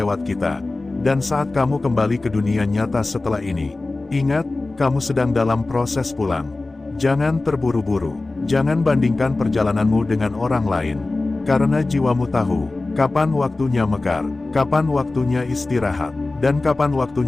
kita. Dan saat kamu kembali ke dunia nyata setelah ini, ingat, kamu sedang dalam proses pulang. Jangan terburu-buru. Jangan bandingkan perjalananmu dengan orang lain. Karena jiwamu tahu kapan waktunya mekar, kapan waktunya istirahat, dan kapan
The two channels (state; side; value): quieter; right; 3.2 dB